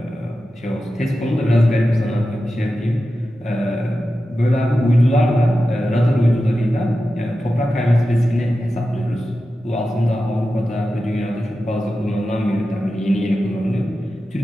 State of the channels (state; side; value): normal; both; correlation 0.92